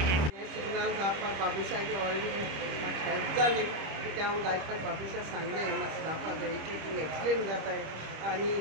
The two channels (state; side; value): late; left; 25 ms